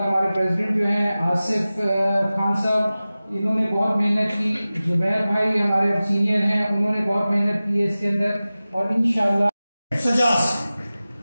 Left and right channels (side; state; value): both; inverted; correlation -0.96